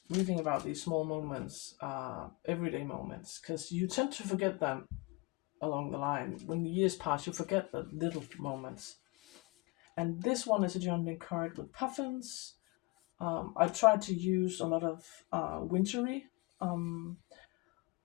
reading about these small moments, everyday moments, because you tend to forget them along the line. When the years pass, you forget the little moments. And this one is a journaling card with puffins. I tried to use a lot of wintry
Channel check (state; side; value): quieter; right; 25.3 dB